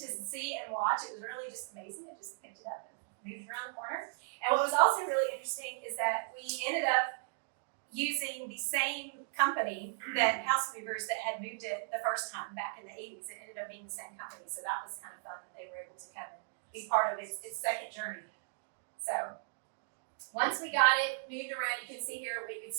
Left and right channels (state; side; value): silent; left; digital silence